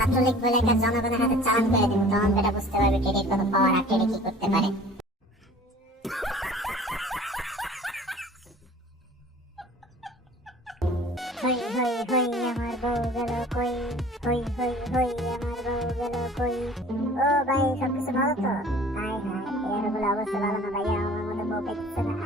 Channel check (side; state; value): both; normal; correlation 0.47